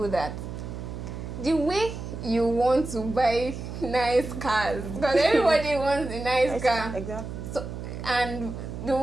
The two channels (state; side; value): noise; right; hum, 8 dB below the sound